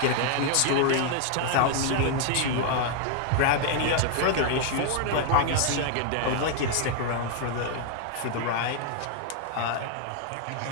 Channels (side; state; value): both; different; correlation 0.00